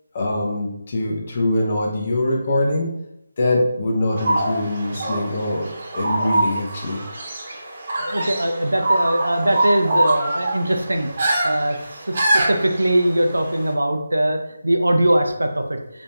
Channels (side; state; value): both; inverted; correlation -0.91